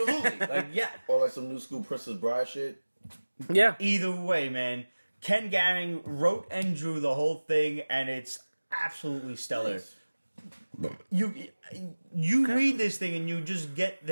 Yeah. Or some new school Princess Bride shit. Yeah. Either way, man. Ken Garing wrote and drew the whole thing, and it's absolutely stellar. You read this thing, and you just get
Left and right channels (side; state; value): both; inverted; correlation -1.00